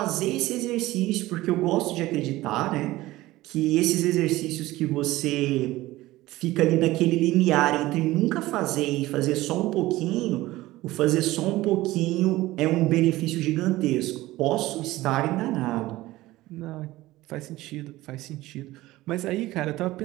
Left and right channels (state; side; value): quieter; left; 17.6 dB